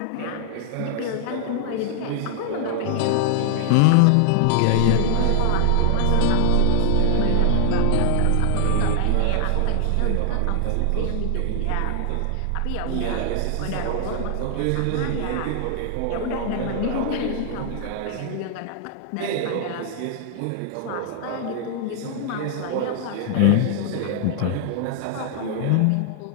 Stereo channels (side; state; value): both; different; correlation 0.00